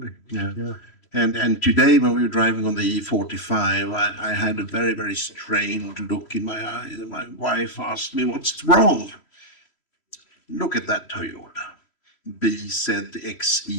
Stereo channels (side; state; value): right; late; 3.1 ms